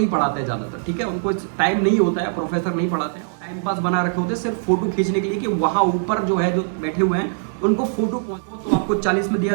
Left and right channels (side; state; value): left; silent; digital silence